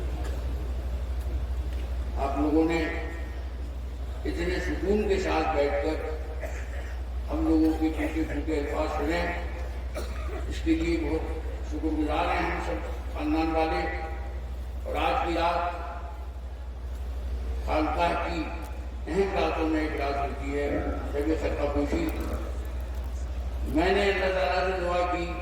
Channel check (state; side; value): identical; both; correlation 1.00